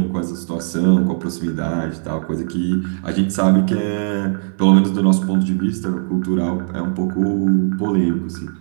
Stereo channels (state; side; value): silent; left; 67 dB below the other